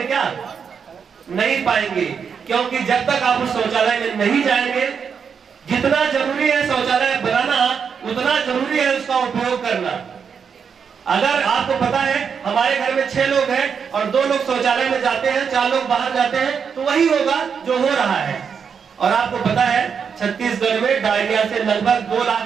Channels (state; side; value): quieter; left; 6.6 dB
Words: क्या? नहीं पाएंगे, क्योंकि जब तक आप उस शौचालय में नहीं जाएंगे, जितना जरूरी है शौचालय बनाना उतना जरूरी है उसका उपयोग करना। अगर आपको पता है हमारे घर में 6 लोग हैं और 2 लोग शौचालय में जाते हैं, 4 लोग बाहर जाते हैं, तो वही होगा जो हो रहा है। और आपको पता है छत्तीसगढ़ में डायरिया से लगभग 2